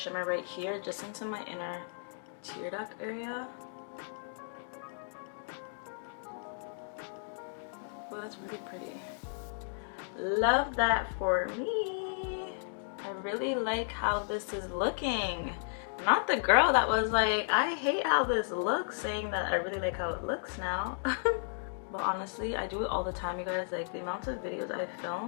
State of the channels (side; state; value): right; silent; digital silence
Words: right here just into my inner tear duct area. Oh, that's really pretty. Love that for me. I really like how this is looking. Not the girl that was like, I hate how this looks, saying that I really like how it looks now. But honestly, I do it all the time, you guys. Like, the amount of videos I